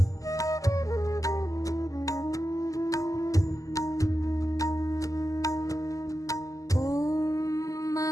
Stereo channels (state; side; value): late; right; 0.16 ms